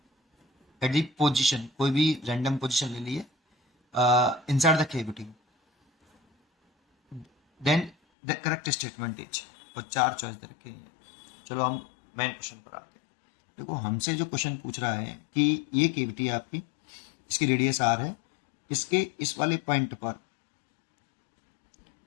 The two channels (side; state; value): right; drops out; at 8.0 s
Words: at the position, कोई भी रैंडम पोजिशन ले लिए inside the cavity, then the correct statement is, और चार चॉइस दे रखे हैं। चलो हम मेन क्वेश्चन पर आते हैं। देखो, हमसे जो क्वेश्चन पूछ रहा है कि ये केविटी है आपकी, इसकी रेडियस आर है, इसके इस वाले पॉइंट पर